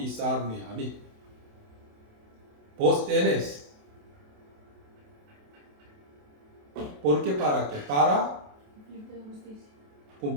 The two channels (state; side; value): late; left; 28 ms